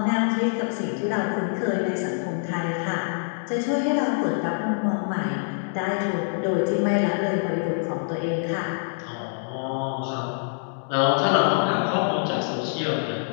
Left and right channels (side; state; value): right; silent; digital silence